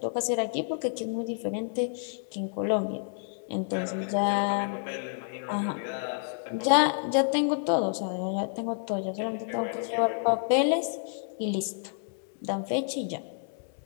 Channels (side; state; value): right; silent; 58 dB below the other